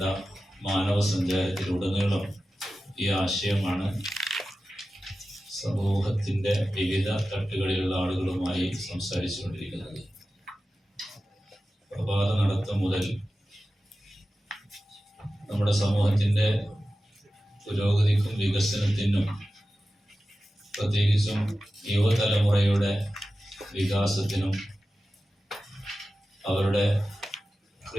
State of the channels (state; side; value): normal; both; correlation 0.94